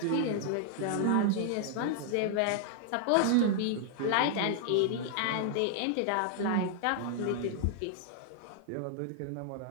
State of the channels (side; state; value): both; different; correlation -0.01